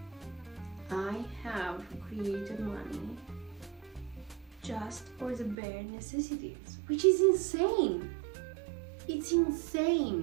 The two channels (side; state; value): left; drops out; at 5.6 s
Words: I have created money just for the bare necessities, which is insane. It's